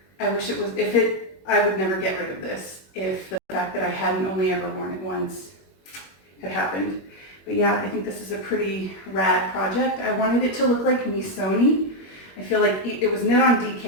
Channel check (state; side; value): late; right; 21 ms